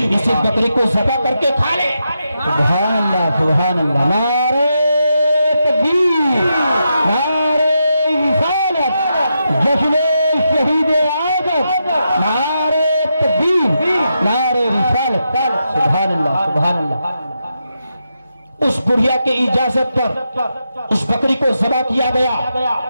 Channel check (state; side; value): inverted; both; correlation -0.85